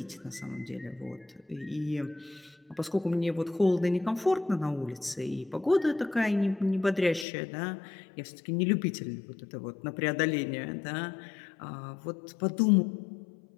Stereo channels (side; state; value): right; drops out; at 7.2 s